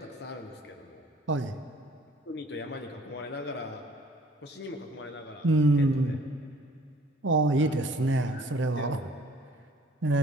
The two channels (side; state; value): both; normal; correlation 0.55